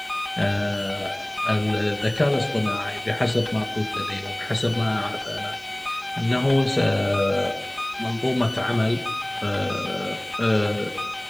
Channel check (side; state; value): left; noise; hiss, 26 dB below the sound